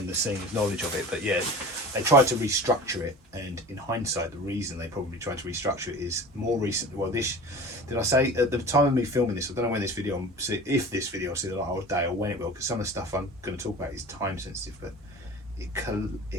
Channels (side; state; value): both; normal; correlation 0.37